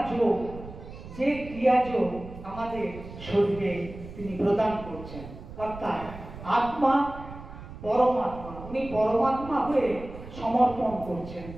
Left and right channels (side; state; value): right; noise; rumble, 14 dB below the sound